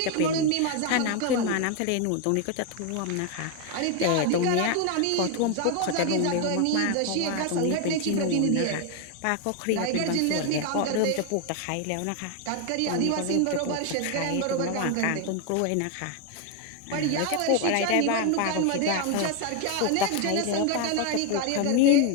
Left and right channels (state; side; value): different; both; correlation 0.01